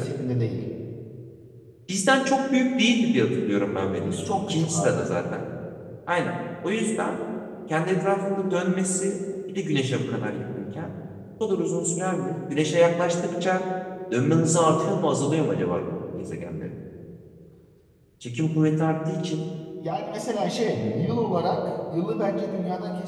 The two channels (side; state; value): both; identical; correlation 1.00